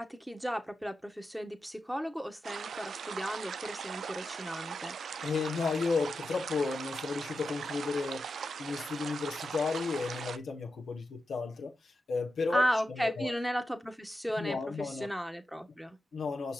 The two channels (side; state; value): both; normal; correlation 0.89